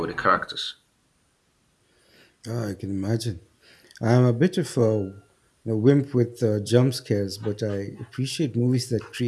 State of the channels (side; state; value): both; identical; correlation 1.00